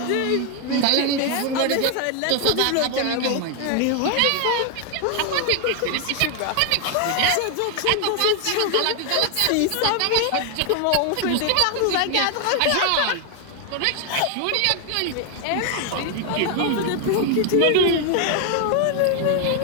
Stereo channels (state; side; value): different; both; correlation 0.01